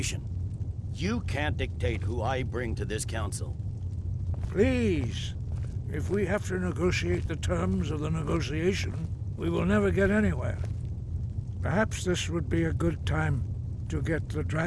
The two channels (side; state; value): both; identical; correlation 1.00